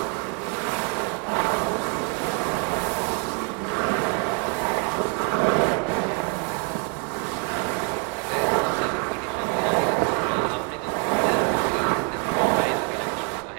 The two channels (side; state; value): left; quieter; 37.4 dB